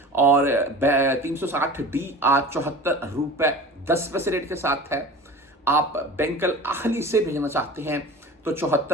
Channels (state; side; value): normal; both; correlation 0.36